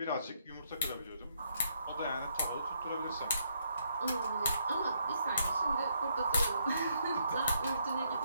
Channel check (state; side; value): inverted; both; correlation -0.74